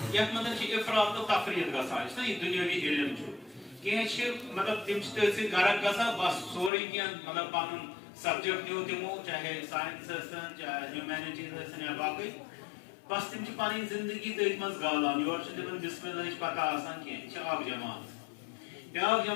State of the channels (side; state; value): right; drops out; at 6.7 s